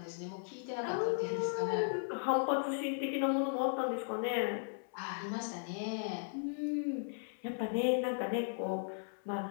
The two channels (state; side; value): silent; right; 53 dB below the other